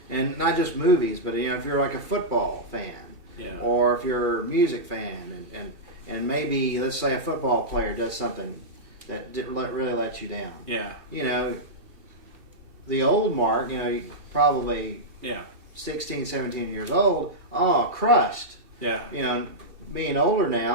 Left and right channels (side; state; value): left; late; 2.7 ms